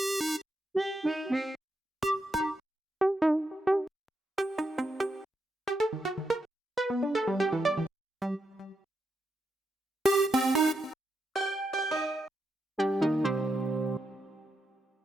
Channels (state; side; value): normal; both; correlation 0.83